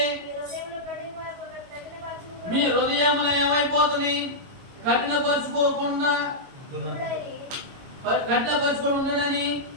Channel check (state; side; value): late; left; 22 ms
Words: మీ హృదయంలో ఏమైపోతుంది? కఠినపరుచుకోకుండా ఉండనని